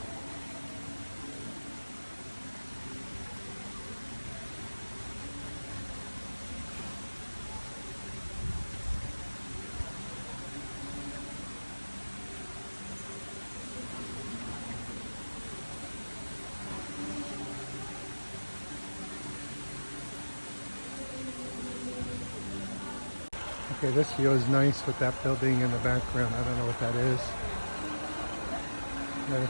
Okay, this view is nice with that building in the background. I don't know what that is. I'm going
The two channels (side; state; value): both; inverted; correlation -1.00